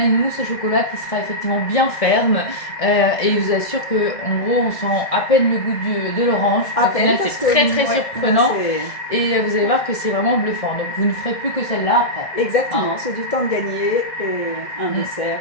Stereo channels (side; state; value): right; late; 1.7 ms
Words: mousse au chocolat qui sera effectivement bien ferme. Et je vous assure qu'en gros, on sent à peine le goût de l'orange. À Au final, peine, c'est très très ouais, surprenant. c'est- Et vous allez voir que c'est vraiment bluffant. Donc vous ne ferez plus que celle-là après. Exactement, c'est du temps de gagner et un dessert.